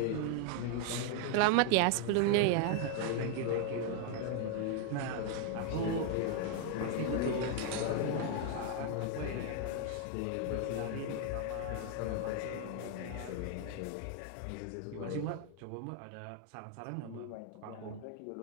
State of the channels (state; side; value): different; both; correlation 0.00